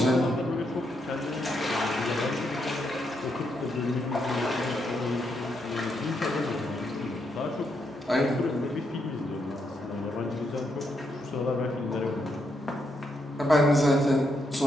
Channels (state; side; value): normal; both; correlation 0.79